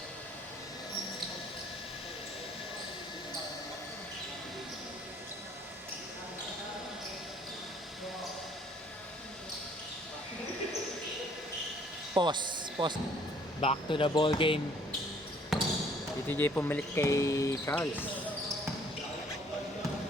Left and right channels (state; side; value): normal; both; correlation 0.60